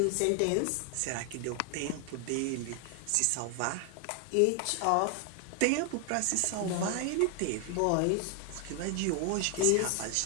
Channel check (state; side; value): different; both; correlation 0.00